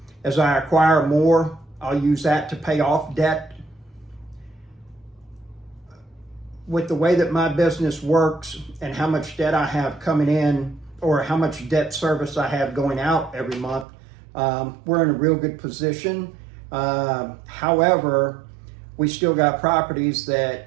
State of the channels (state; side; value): drops out; left; at 13.9 s